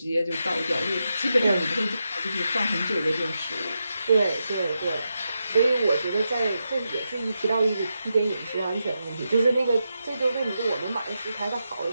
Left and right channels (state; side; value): inverted; both; correlation -0.87